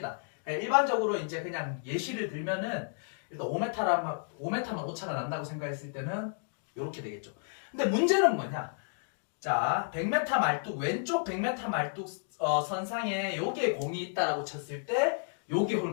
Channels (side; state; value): right; silent; digital silence